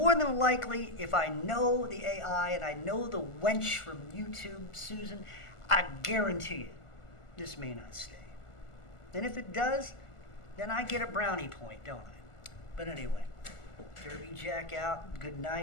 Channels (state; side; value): late; right; 1.4 ms